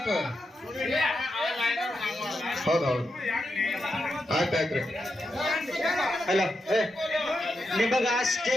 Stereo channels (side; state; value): both; normal; correlation 0.86